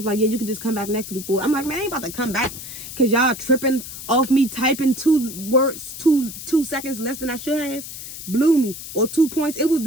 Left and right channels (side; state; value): left; noise; hiss, 11 dB below the sound